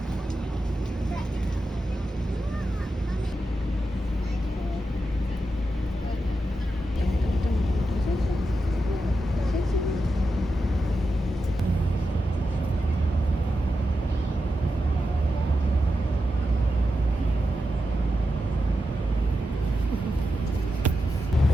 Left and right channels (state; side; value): normal; both; correlation 0.89